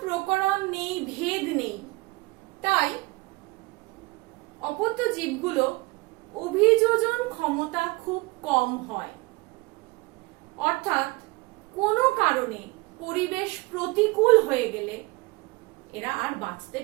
প্রকরণ নেই, ভেদ নেই, তাই অপত্য জীবগুলো অভিযোজন ক্ষমতা খুব কম হয়। অর্থাৎ কোনো কারণে পরিবেশ প্রতিকূল হয়ে গেলে এরা আর বাঁচতে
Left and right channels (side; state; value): left; quieter; 23.5 dB